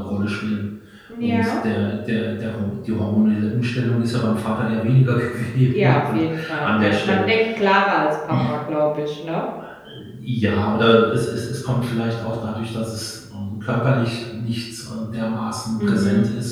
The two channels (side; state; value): both; identical; correlation 1.00